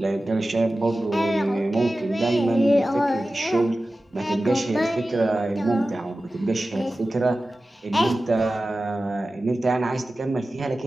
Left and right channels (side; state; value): both; normal; correlation 0.95